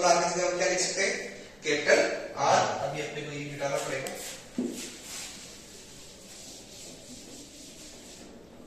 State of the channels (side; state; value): left; noise; hum, 30 dB below the sound